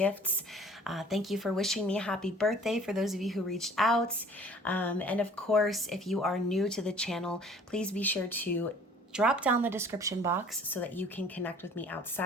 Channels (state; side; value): normal; both; correlation 0.52